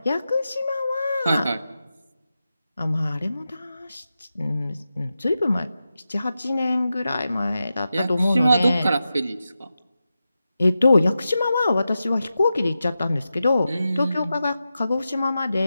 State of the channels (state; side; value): inverted; both; correlation -0.91